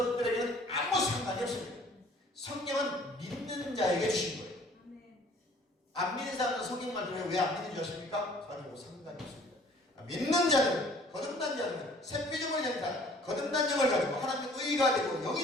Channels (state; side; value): normal; both; correlation 0.54